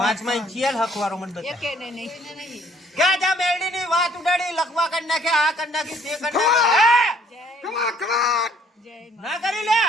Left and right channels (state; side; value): normal; both; correlation 0.62